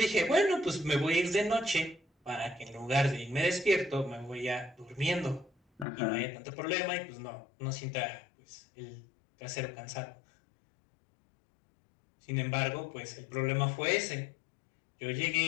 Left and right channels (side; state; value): right; drops out; at 5.9 s